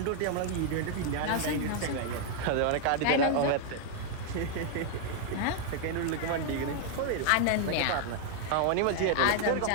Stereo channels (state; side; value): different; both; correlation 0.00